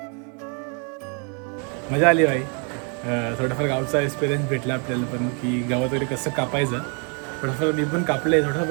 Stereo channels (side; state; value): left; quieter; 37.3 dB